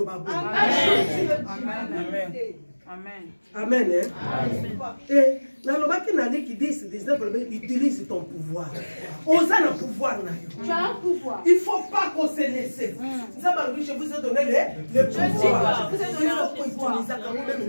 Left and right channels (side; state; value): both; inverted; correlation -1.00